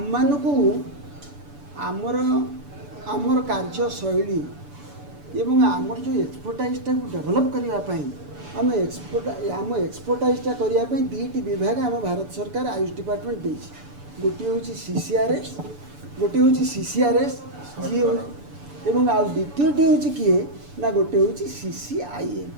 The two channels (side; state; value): left; late; 6.9 ms